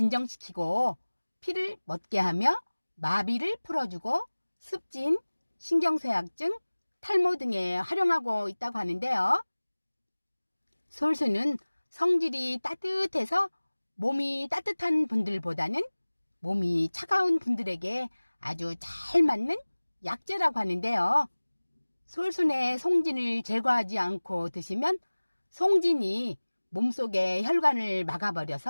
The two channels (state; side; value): inverted; both; correlation -1.00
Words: 피를 멎게 하며 마비를 풀어주고 습진, 신경쇠약증, 탈모 등에 활용하고 있다고 하는데요. 솔순은 성질이 따뜻해서 몸이 따뜻한 분들보다는 몸이 차가운 분들에게 아주 잘 맞는 약재라고 하는데요. 솔순의 송진을 제거하지 않고 드시면 송진이 몸속의 혈관을